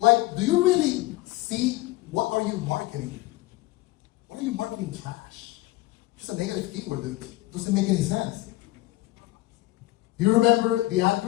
do you really see what are you marketing? What are you marketing trash? Just a negative keyword, dude. Doesn't make any sense. You remember the ad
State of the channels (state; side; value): quieter; right; 18.2 dB